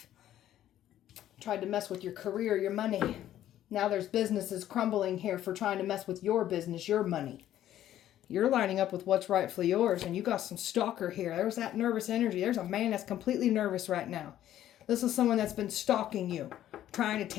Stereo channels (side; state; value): right; quieter; 12.2 dB